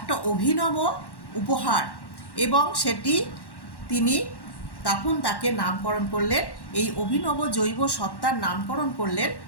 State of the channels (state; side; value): late; right; 1.1 ms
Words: অভিনব উপহার, এবং সেটি তিনি তখন তাকে নামকরণ করলেন, এই অভিনব জৈব সত্তার নামকরণ করলেন